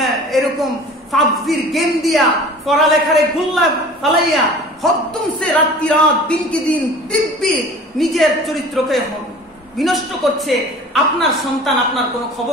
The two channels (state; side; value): normal; both; correlation 0.43